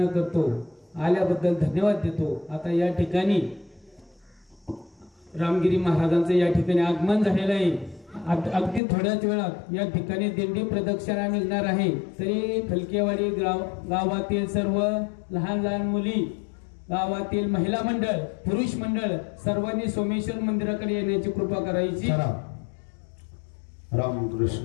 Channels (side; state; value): right; drops out; at 8.8 s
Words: करतो. आल्याबद्दल धन्यवाद देतो. आता या ठिकाणी रामगिरी महाराजांचं या ठिकाणी आगमन झालेलं आहे. अगदी थोड्याच वेळात या ठिकाणी दिंडी प्रदक्षिणा निघणार आहे. तरी फलकेवाडी गावातील सर्व लहान लहान मुली, गावातील महिला मंडळ, पुरुष मंडळ सर्वांनी सोमेश्वर मंदिराकडे येण्याची कृपा करायची.